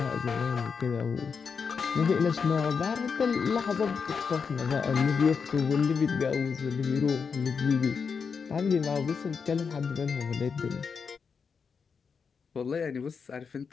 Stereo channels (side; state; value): right; quieter; 5.8 dB